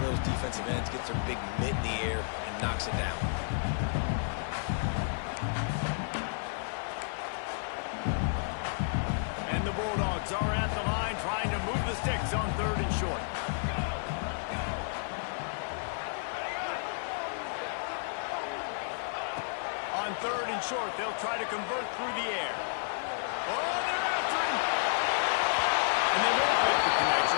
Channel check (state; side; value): silent; right; 57 dB below the other